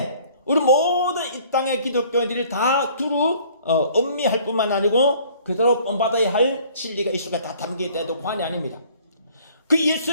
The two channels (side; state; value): both; inverted; correlation -0.55